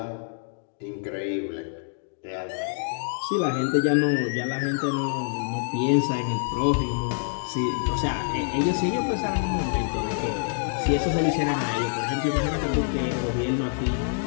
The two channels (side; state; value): right; silent; digital silence